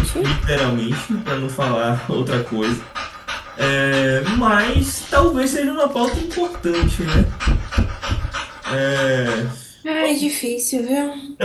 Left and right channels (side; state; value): both; identical; correlation 1.00